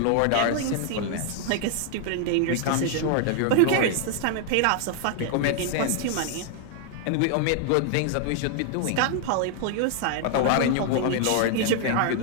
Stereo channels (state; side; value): different; both; correlation 0.00